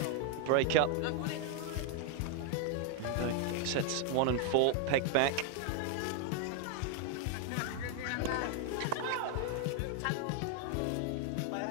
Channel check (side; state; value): both; different; correlation 0.00